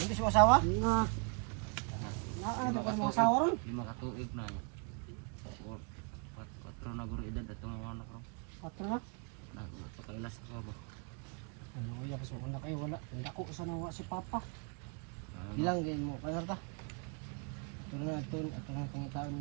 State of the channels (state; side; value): quieter; left; 36.6 dB